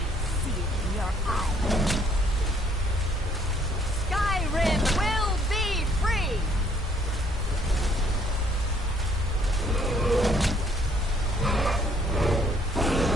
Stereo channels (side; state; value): both; normal; correlation 0.64